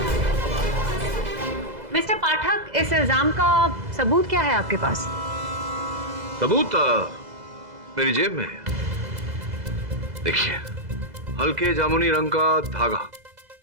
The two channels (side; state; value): left; late; 2.0 ms